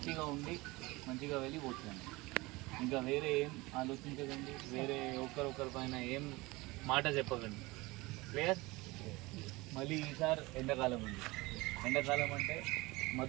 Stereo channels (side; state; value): left; quieter; 22.3 dB